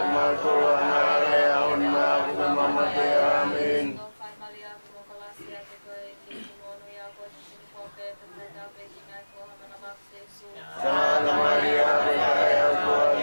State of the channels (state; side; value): inverted; both; correlation -1.00